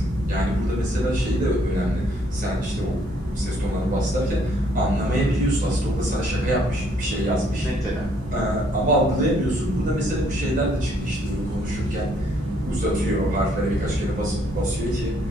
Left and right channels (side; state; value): both; normal; correlation 0.67